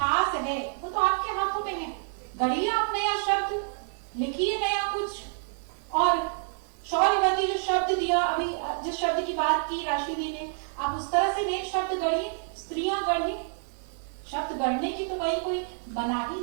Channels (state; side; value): silent; left; 59 dB below the other